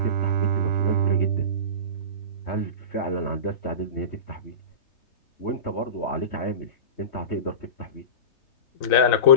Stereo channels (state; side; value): late; right; 4.0 ms